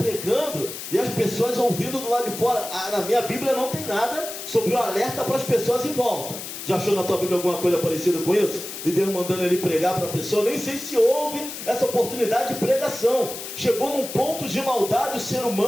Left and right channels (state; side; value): noise; left; hiss, 9 dB below the sound